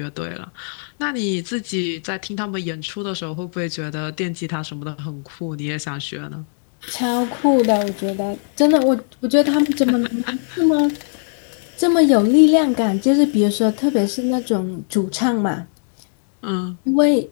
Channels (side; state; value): right; silent; digital silence